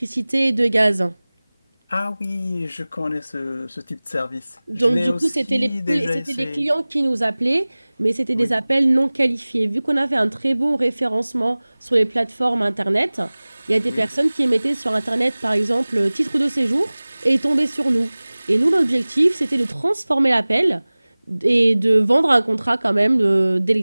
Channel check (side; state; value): both; inverted; correlation -0.99